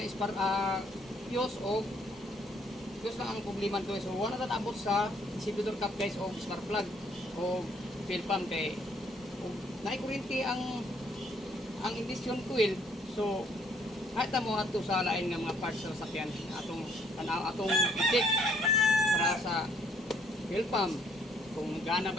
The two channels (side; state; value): both; normal; correlation 0.66